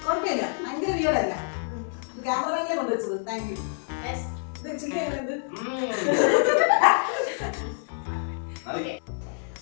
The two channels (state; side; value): silent; right; 60 dB below the other